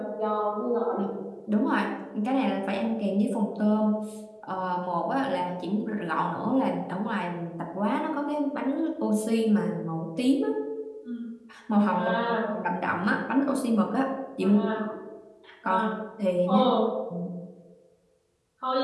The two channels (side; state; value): both; identical; correlation 1.00